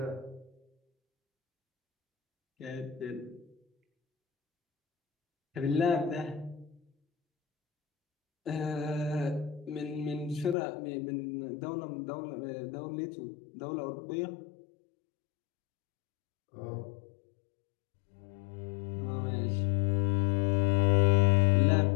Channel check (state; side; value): drops out; right; at 10.6 s